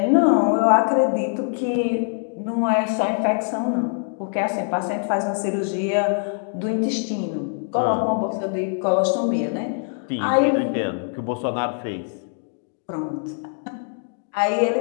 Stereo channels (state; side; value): silent; right; 58 dB below the other